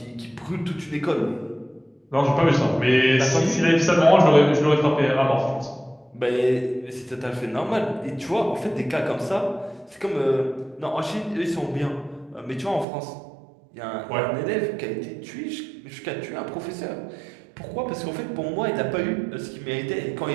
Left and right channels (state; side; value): drops out; left; at 12.9 s